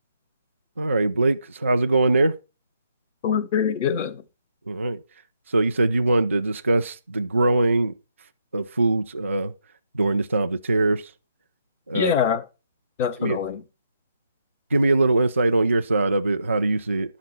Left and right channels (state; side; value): inverted; both; correlation -0.79